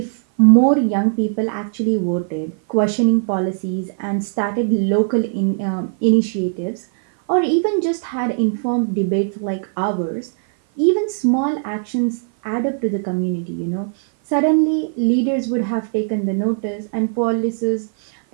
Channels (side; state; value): left; silent; 56 dB below the other